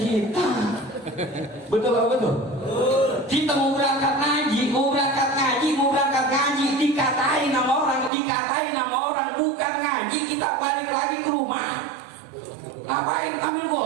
betul apa betul? Kita mau berangkat ngaji, dikatain nama orang, bukan ngaji, kita balik lagi ngapain ambil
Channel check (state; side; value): drops out; left; at 8.1 s